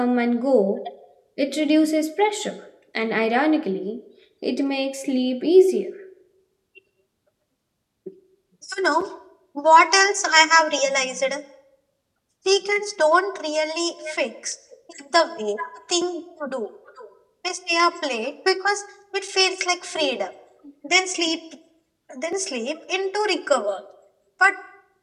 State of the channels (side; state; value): both; identical; correlation 1.00